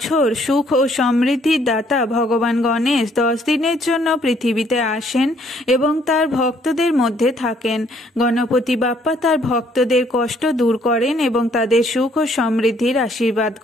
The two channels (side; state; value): both; normal; correlation 0.65